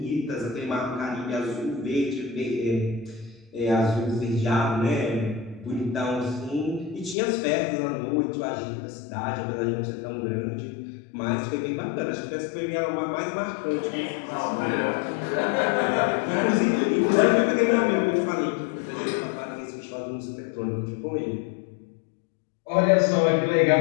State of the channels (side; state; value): right; drops out; at 7.2 s